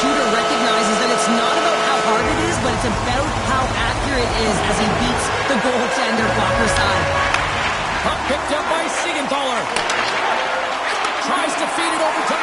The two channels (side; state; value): both; identical; correlation 1.00